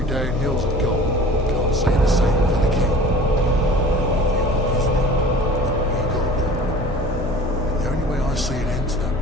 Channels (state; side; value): normal; both; correlation 0.43